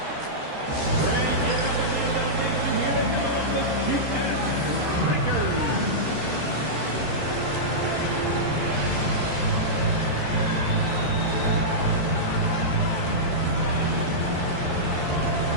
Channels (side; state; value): left; late; 13 ms